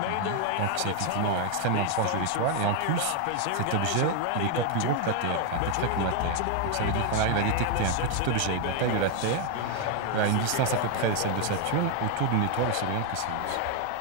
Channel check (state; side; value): different; both; correlation 0.01